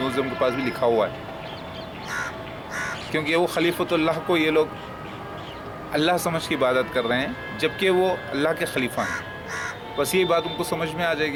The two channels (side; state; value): both; identical; correlation 1.00